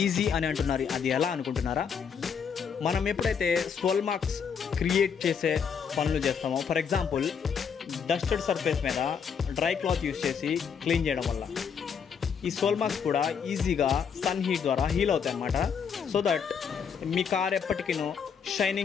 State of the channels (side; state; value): right; quieter; 6.8 dB